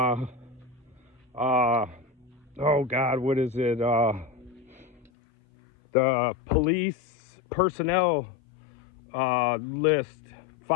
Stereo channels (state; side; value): drops out; right; at 5.1 s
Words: oh God, what is it? The police personnel list